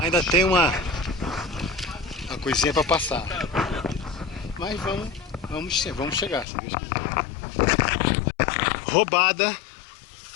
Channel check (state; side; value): drops out; right; at 6.5 s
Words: Ainda tem uma coisinha para passar. Mas vamos chegar, se Deus quiser. Roubada.